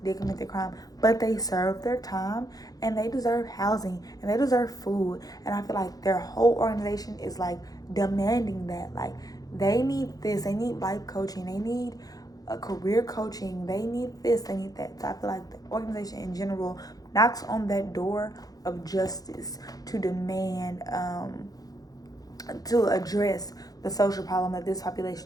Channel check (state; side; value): late; right; 0.18 ms